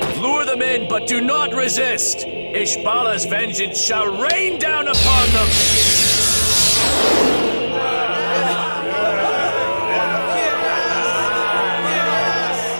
Lure them in, but do not resist! Ishbala's vengeance shall rain down upon them!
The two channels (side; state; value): both; inverted; correlation -1.00